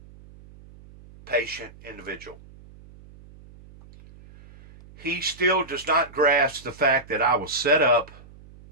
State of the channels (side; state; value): right; noise; hum, 22 dB below the sound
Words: patient individual. He still does not grasp the fact that I was set up